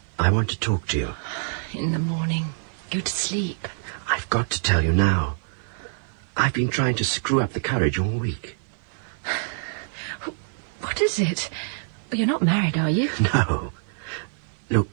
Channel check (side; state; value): left; silent; 55 dB below the other